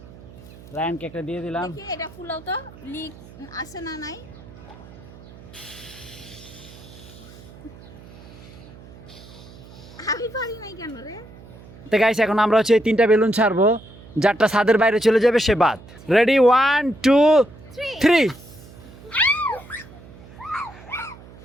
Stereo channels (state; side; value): noise; right; hum, 19 dB below the sound